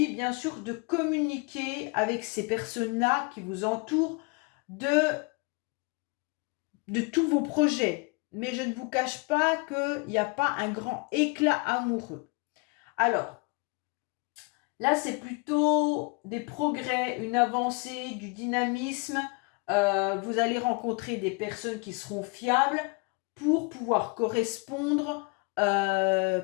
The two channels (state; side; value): quieter; right; 31.3 dB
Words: bien sûr, de communiquer avec ces personnes-là qui vous entourent de tous vos projets. Mais je ne vous cache pas qu'il n'y a pas un grand éclat amoureux. Alors, là, c'est plutôt des progrès, une avancée, du dynamisme. Vous allez rencontrer des personnes qui seront fiables pour pouvoir correspondre